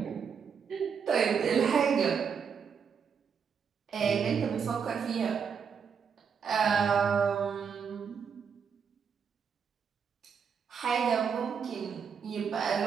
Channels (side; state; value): left; quieter; 6.6 dB